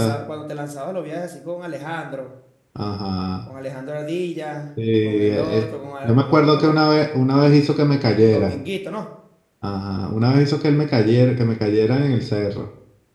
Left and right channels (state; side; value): identical; both; correlation 1.00